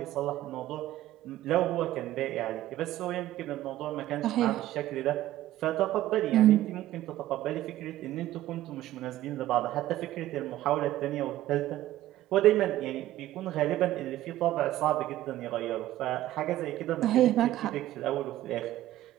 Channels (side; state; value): left; quieter; 14.4 dB